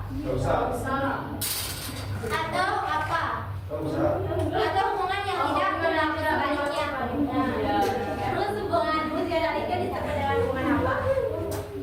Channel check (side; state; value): both; identical; correlation 1.00